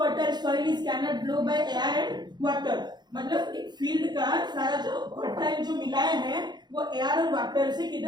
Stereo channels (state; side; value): late; left; 0.21 ms